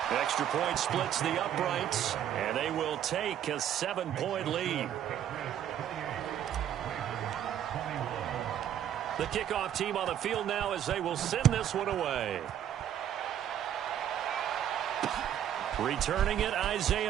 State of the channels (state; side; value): quieter; left; 10.4 dB